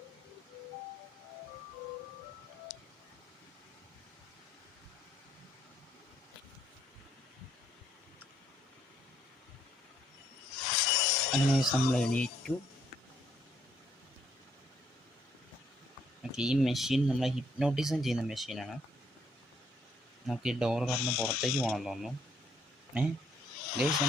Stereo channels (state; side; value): normal; both; correlation 0.70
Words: അങ്ങനെ നമ്മൾ എണീറ്റു. ഓക്കെ, ഈ മെഷീൻ നമ്മളെ ഹിപ്നോട്ടിസം ചെയ്യുന്ന മെഷീനാണ്. നമുക്ക് ഈ ഡോർ കടന്ന് പുറത്തേക്ക് പോകണം തോന്നുന്നു. ഗൈസ്